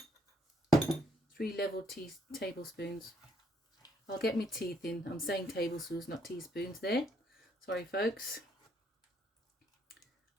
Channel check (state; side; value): normal; both; correlation 0.70